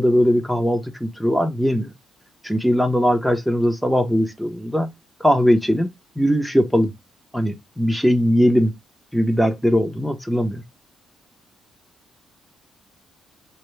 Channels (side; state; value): both; normal; correlation 0.95